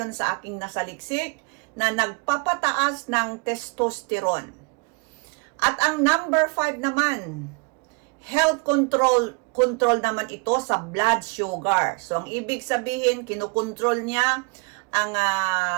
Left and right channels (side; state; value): left; quieter; 31.2 dB